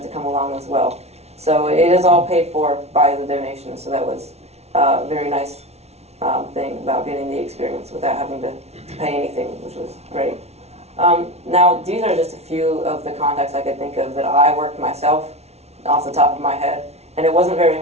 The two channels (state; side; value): late; left; 0.31 ms